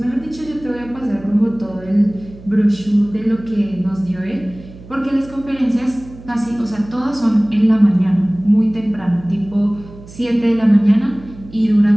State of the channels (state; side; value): noise; right; hum, 19 dB below the sound